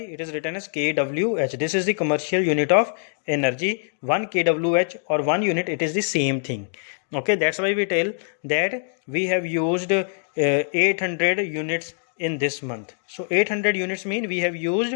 is written as kWh. This is the commercial unit of energy. 1 kWh or 1 unit, it is the same thing. Okay, that's why we tell that we have used 800 units in this month. So 800 units mean we have used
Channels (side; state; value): right; silent; 63 dB below the other